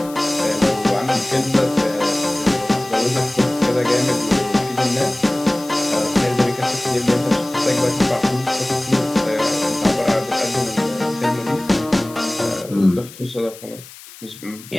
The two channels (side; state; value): left; noise; hiss, 18 dB below the sound